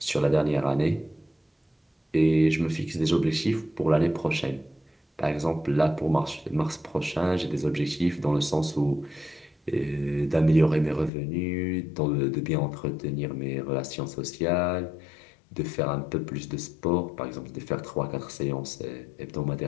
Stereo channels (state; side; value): drops out; right; at 11.1 s